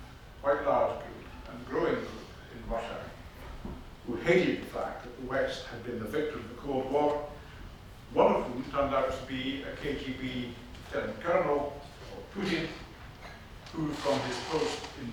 quite large group and growing group in Russia, who hated the fact that the West had been the victor of the Cold War, one of whom turned out to be a KGB lieutenant colonel, Putin, who from his post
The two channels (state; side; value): identical; both; correlation 1.00